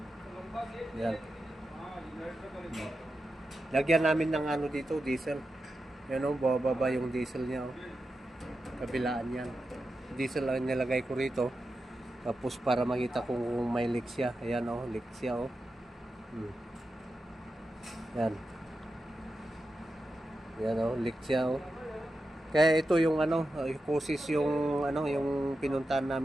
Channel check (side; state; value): both; normal; correlation 0.90